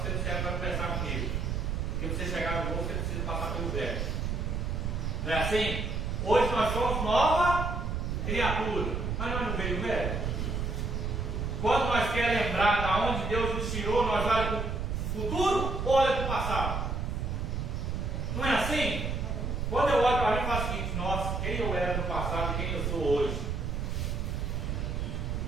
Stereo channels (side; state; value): right; noise; rumble, 1 dB below the sound